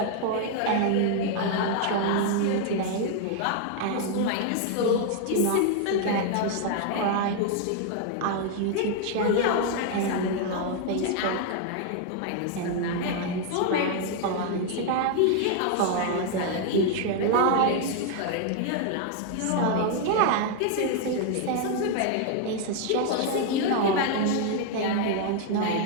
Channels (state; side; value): different; both; correlation 0.00